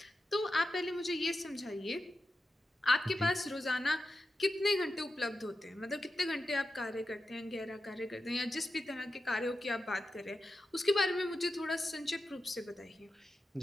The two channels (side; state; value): both; normal; correlation 0.91